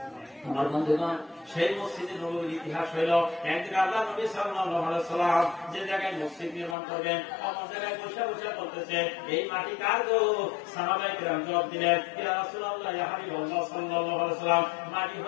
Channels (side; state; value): right; drops out; at 6.8 s